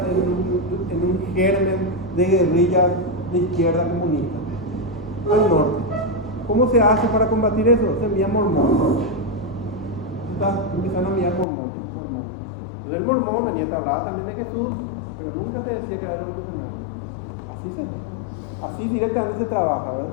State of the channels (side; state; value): right; drops out; at 11.5 s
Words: en un germen de guerrillas de izquierda comunista? Al norte. ¿Cómo se hace para combatir eso? Se envía mormones. Empiezan a enviar mormones. Entonces el mormón venía a hablar también de Jesús, pero nunca te decía que era revolucionario. Así directamente se trabaja, ¿verdad?